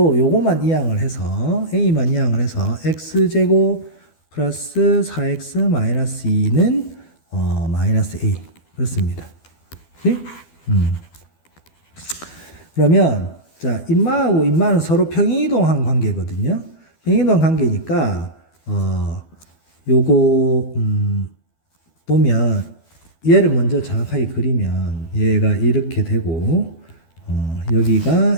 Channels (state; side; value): late; right; 12 ms